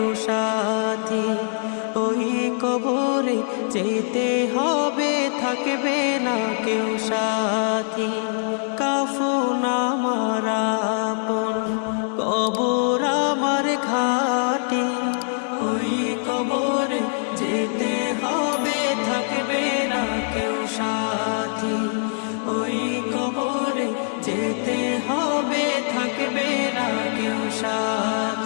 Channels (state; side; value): silent; right; 57 dB below the other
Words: সাথী। ওই কবরে যেতে হবে, থাকবে না কেউ সাথী। কাফন আমার আপন, কবর আমার ঘাটি, ওই কবরে যেতে হবে, থাকবে না কেউ সাথী। ওই কবরে যেতে হবে, থাকবে না কেউ